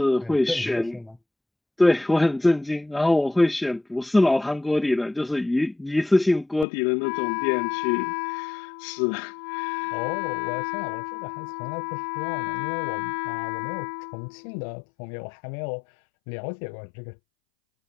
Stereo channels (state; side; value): drops out; right; at 6.7 s